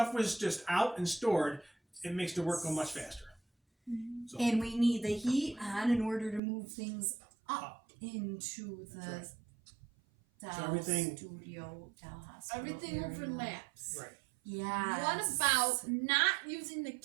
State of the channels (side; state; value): left; drops out; at 6.4 s